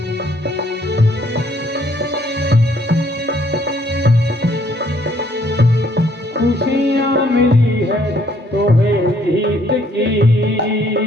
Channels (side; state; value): both; normal; correlation 0.65